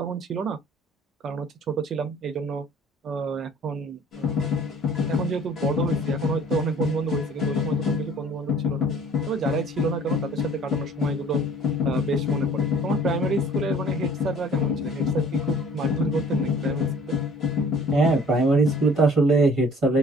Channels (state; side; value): normal; both; correlation 0.52